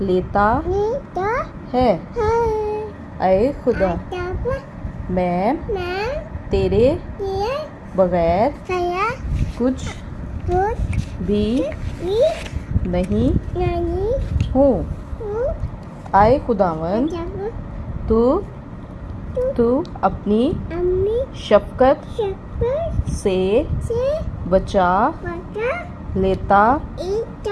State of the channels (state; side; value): identical; both; correlation 1.00